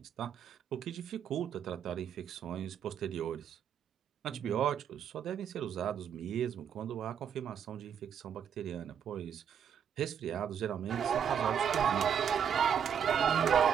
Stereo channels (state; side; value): quieter; left; 8.2 dB